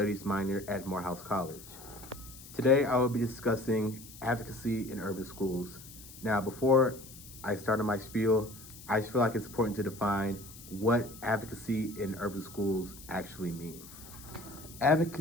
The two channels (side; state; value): left; noise; hiss, 17 dB below the sound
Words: minor at Morehouse College. Today, I will be discussing advocacy in urban schools. Now, before I start on my spiel, I feel like it's important to define what advocacy in urban schools actually means.